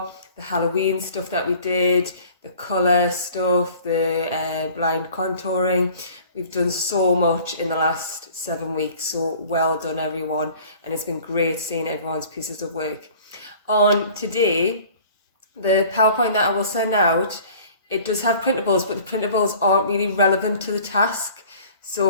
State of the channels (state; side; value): inverted; both; correlation -0.48